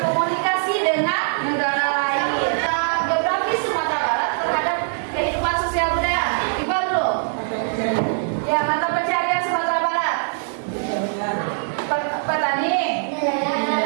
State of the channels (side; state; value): left; silent; 64 dB below the other